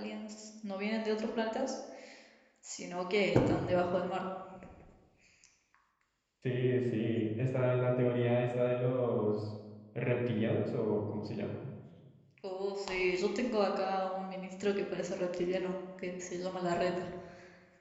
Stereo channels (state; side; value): identical; both; correlation 1.00